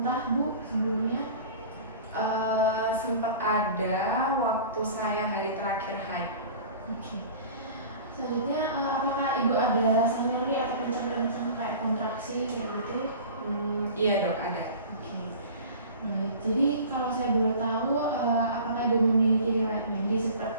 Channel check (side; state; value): both; inverted; correlation -0.40